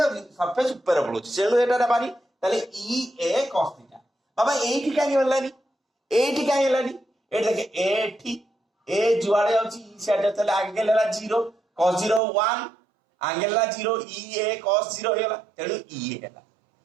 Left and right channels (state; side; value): drops out; left; at 12.2 s